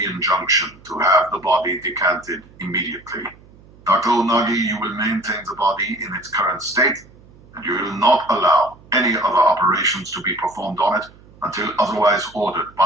injunction to have the body decanted immediately. Dr. Onagi, you will maintain the body in its current state, and you will not allow any other operations to be performed on it until otherwise ordered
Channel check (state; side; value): noise; right; hum, 25 dB below the sound